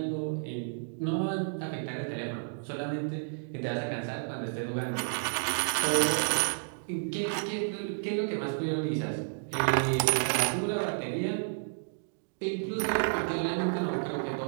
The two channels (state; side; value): silent; left; digital silence